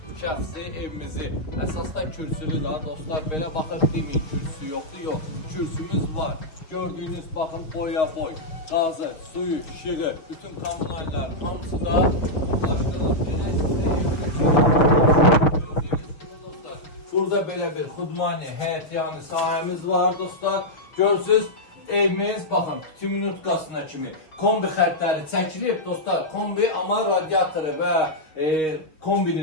şəxsi evimizi. Əsasda kürsülü da dostlar, belə baxıb deməyin kürsü yoxdur, yox. Kürsümüz var. Gördüyünüz baxın boya boy, qazı, suyu, işığı, bütün kommunallar hamısı da ulaşdırılıb. Burada belə bir xudmani, həyətyanı sahəmiz var dostlar. Görürsünüz, evimiz, baxın, 2 minutkasına kimi kombi xəttləri çəkilib dostlar. Kombi, amma radiatoru və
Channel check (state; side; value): late; right; 6.4 ms